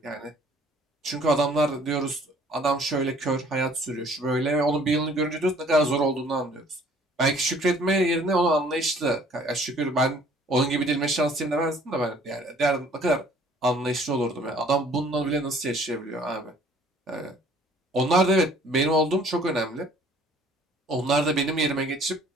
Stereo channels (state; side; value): normal; both; correlation 0.56